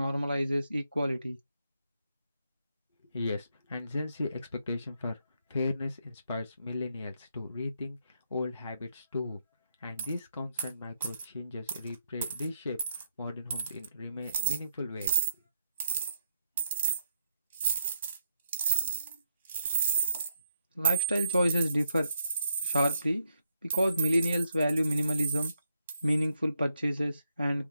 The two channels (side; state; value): both; inverted; correlation -0.80